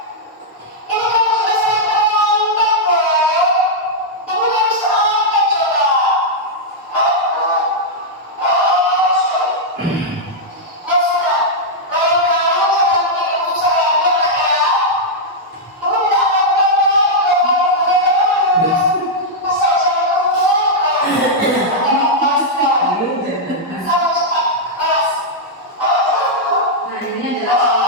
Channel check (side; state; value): both; normal; correlation -0.06